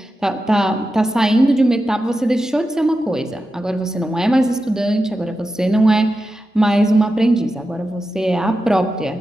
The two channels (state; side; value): normal; both; correlation 0.91